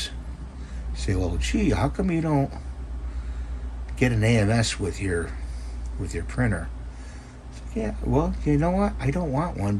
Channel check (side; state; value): both; identical; correlation 1.00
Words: say, well, gee, how come you don't get an AMS with your printer? Yeah, well, you know what? I don't want one